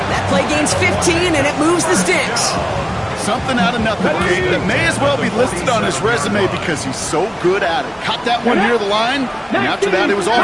That play gains 15, and it moves the sticks. Something out of nothing, Kate, that may as well be listed on his resume because he's so good at it. Caught that one near the line, and after that it was all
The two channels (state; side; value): identical; both; correlation 1.00